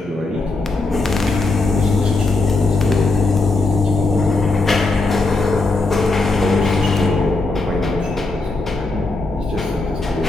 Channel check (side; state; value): right; quieter; 3.3 dB